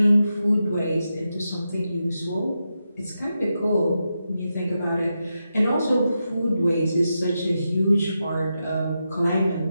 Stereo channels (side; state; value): both; inverted; correlation -0.88